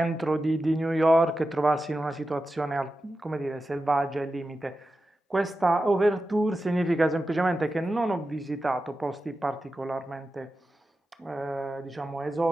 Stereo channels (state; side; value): normal; both; correlation 0.92